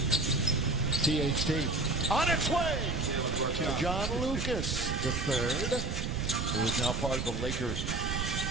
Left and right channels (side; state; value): right; noise; rumble, 2 dB below the sound